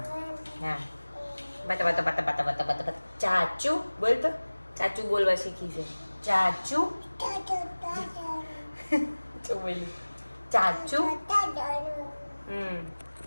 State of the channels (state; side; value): inverted; both; correlation -1.00